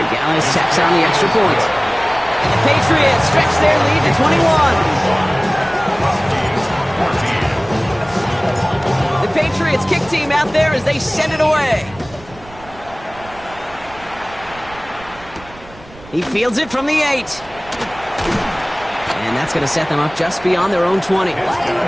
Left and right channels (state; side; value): noise; right; rumble, 21 dB below the sound